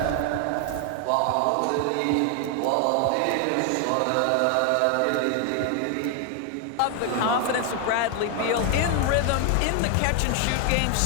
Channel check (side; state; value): both; different; correlation 0.00